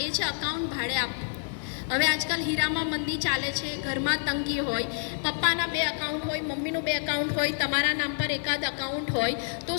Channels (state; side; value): silent; right; digital silence